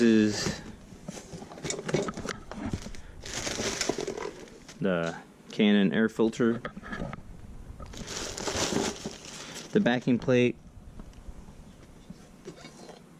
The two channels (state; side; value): identical; both; correlation 1.00